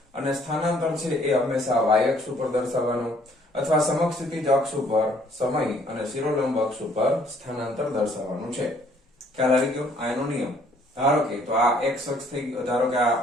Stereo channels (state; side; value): normal; both; correlation 0.62